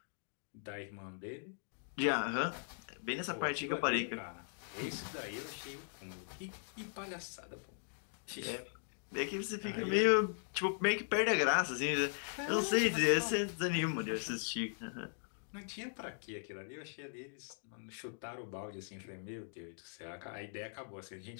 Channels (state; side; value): silent; right; digital silence